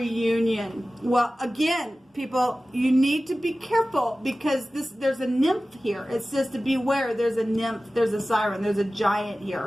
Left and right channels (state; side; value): normal; both; correlation 0.96